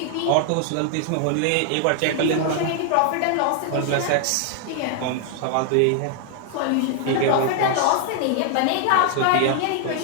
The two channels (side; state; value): both; different; correlation 0.00